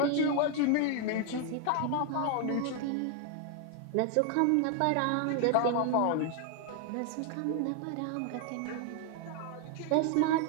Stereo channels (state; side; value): different; both; correlation 0.00